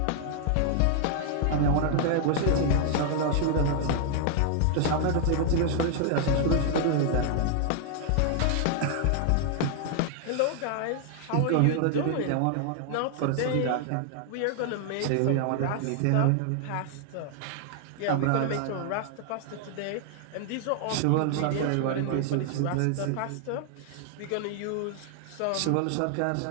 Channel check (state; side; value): different; both; correlation 0.00